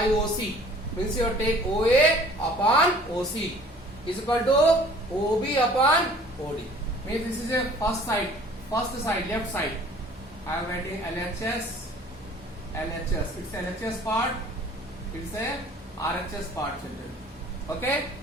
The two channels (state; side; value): normal; both; correlation 0.50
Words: OC. Means you take OA upon OC is equal to OB upon OD. Means this is a first side, left side. I am writing LHS. It's LHS part. It's a RHS part children. Okay.